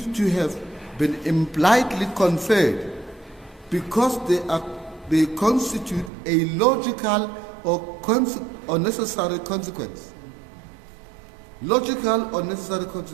to have been impliedly conferred because they constitute a logical or necessary consequence. Logical or necessary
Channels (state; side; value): drops out; left; at 6.1 s